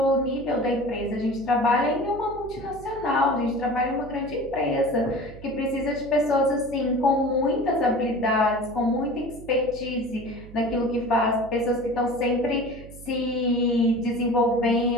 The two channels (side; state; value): right; noise; hum, 17 dB below the sound